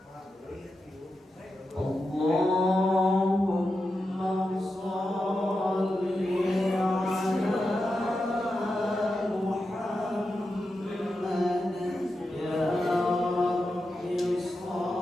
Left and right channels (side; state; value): both; normal; correlation 0.89